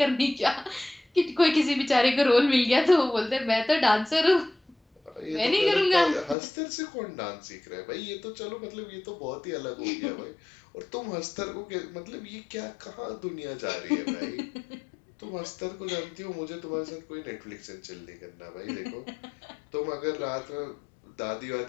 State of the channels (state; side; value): drops out; right; at 6.4 s